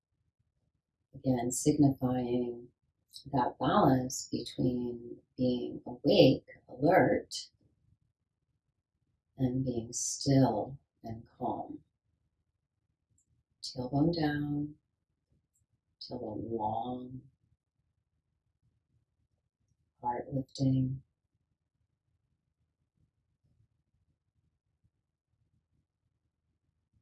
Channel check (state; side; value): identical; both; correlation 1.00